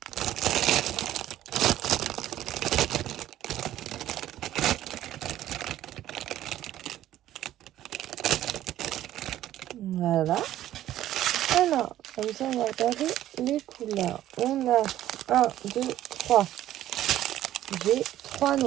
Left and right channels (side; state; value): left; quieter; 13.1 dB